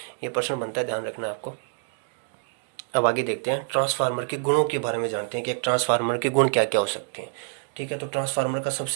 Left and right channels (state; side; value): silent; left; digital silence